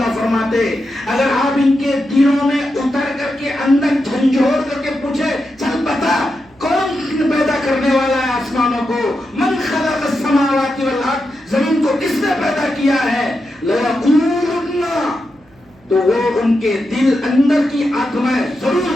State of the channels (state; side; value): noise; right; hum, 30 dB below the sound